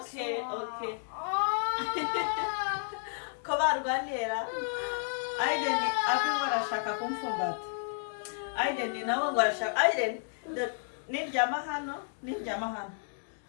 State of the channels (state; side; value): silent; right; digital silence